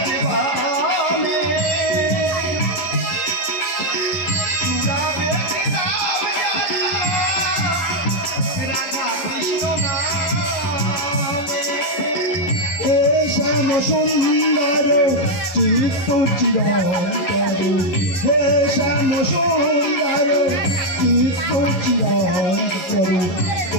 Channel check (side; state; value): right; late; 11 ms